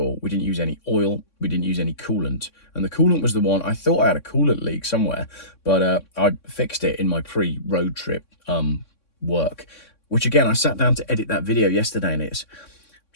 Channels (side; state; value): right; late; 3.6 ms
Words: We didn't use any oil. We didn't use any coolant. And the coolant was the one, I thought I had a coolant leak somewhere, but I fixed it in my pre-road trip work, which again, I sat down to edit that video yesterday and it's